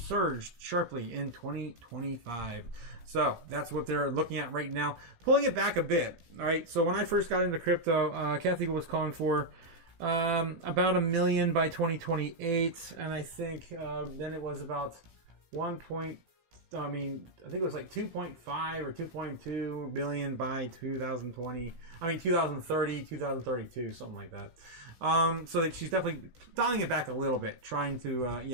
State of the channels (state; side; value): late; left; 16 ms